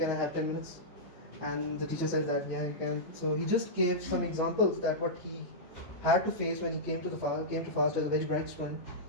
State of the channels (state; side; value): normal; both; correlation -0.12